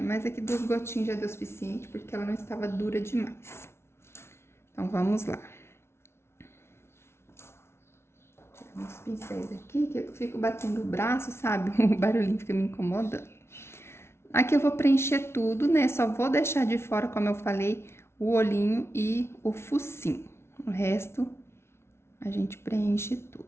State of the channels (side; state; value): right; late; 0.12 ms